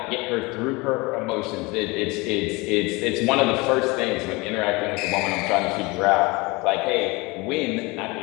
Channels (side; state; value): right; quieter; 24.8 dB